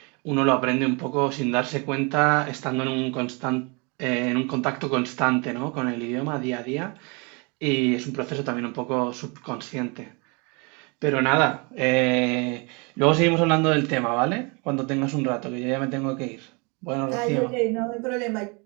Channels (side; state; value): left; quieter; 30.8 dB